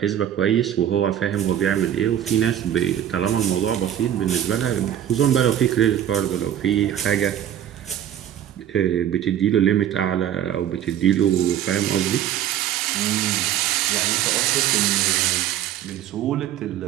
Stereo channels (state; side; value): quieter; left; 10.7 dB